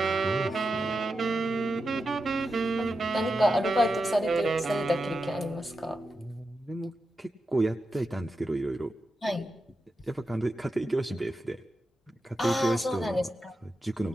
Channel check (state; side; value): normal; both; correlation 0.89